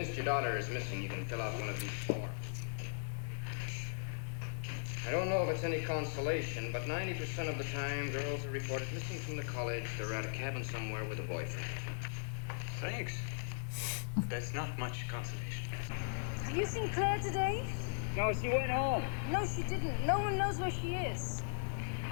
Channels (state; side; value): silent; right; digital silence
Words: your daughter is missing, you can fill out one of these forms. I don't know if it's any consolation, but 90% of the time, girls are reported missing from the college. They're at a cabin somewhere with a boyfriend. Thanks. That's not much consolation. Have you seen Claire today? No, she went home. No, she didn't. No one knows where she is.